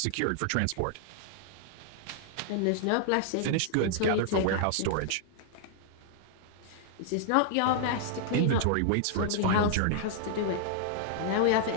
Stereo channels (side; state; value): both; different; correlation -0.01